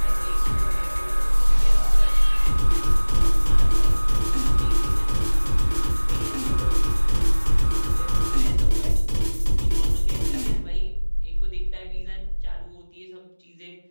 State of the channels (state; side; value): inverted; both; correlation -1.00